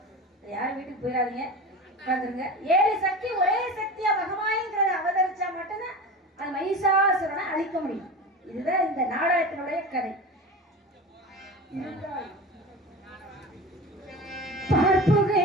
யாரும் வீட்டுக்கு போயிடாதீங்க, உட்காந்துருங்க. 7 சக்தி ஒரே சக்தியா மகமாய்ங்கிறத அவதரிச்சா மட்டும்தான் அந்த மகிஷாசுரனை அழிக்க முடியும். இதுதான் இந்த நாடகத்தினுடைய கதை.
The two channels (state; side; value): normal; both; correlation 0.31